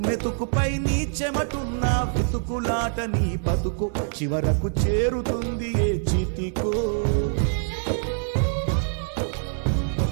మెతుకుపై నీ చెమటున్న వెతుకులాట నీ బతుకు చివరకు చేరుతుంది ఏ చితికో.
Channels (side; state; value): left; silent; digital silence